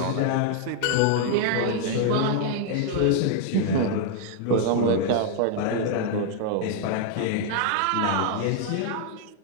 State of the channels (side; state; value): both; different; correlation 0.00